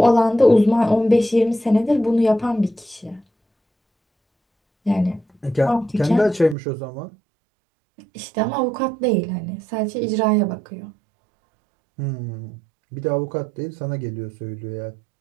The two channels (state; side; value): drops out; left; at 6.6 s